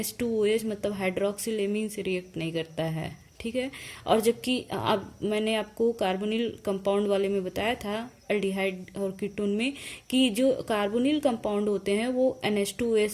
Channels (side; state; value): both; identical; correlation 1.00